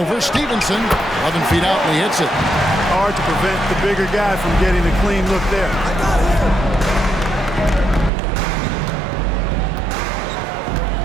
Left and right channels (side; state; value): left; drops out; at 8.1 s